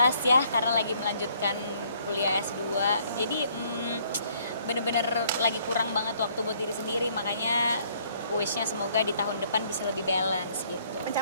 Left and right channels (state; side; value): inverted; both; correlation -0.64